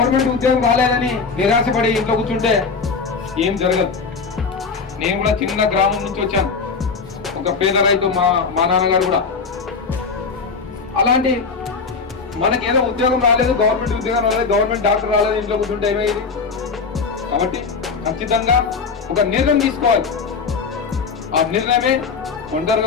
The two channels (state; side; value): quieter; right; 5.0 dB